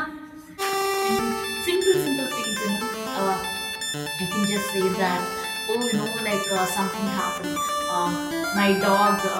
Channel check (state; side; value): identical; both; correlation 1.00